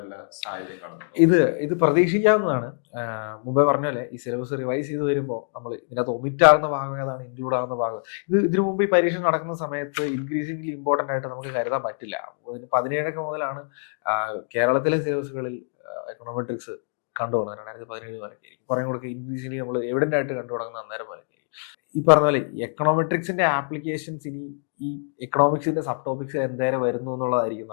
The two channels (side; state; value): right; silent; digital silence